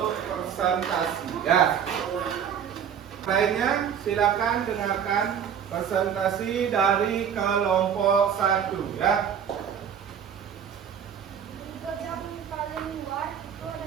presentasi. Ya. Lainnya silakan dengarkan presentasi dari kelompok 1 ya. Yang paling luar itu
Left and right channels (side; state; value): left; quieter; 8.2 dB